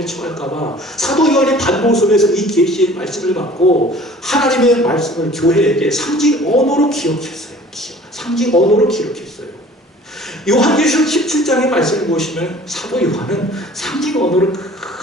처할까봐 사도 요한이 반복서면서 이 계시의 말씀을 받고 하나님의 말씀을 교회에게 상징 언어로 기록했어요. 상징 언어로 기록했어요. 요한계시록 17장의 말씀을 보시면 사도 요한은 상징 언어로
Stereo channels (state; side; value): normal; both; correlation 0.48